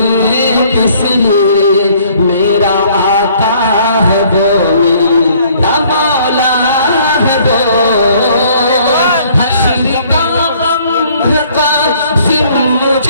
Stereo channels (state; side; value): inverted; both; correlation -0.60